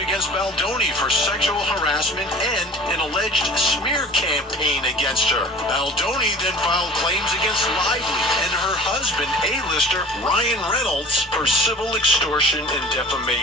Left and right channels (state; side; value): normal; both; correlation 0.43